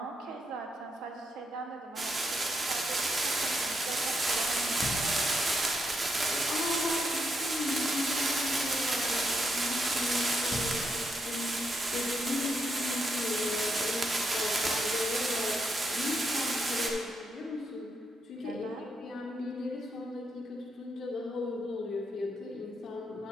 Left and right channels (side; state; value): both; normal; correlation 0.81